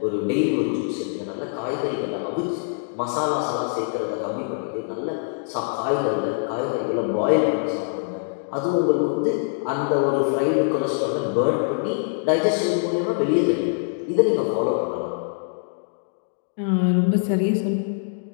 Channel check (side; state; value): right; silent; digital silence